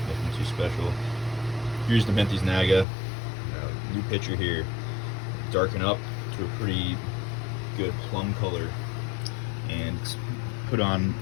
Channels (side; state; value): right; drops out; at 2.9 s